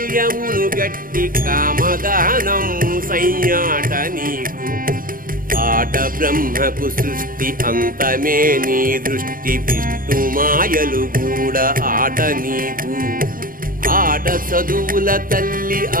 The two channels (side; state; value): left; late; 0.41 ms